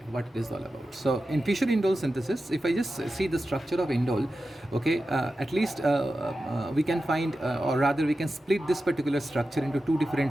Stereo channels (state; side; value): normal; both; correlation 0.92